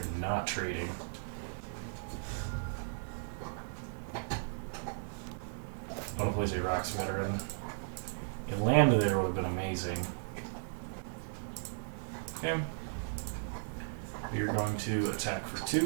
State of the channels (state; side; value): silent; left; 54 dB below the other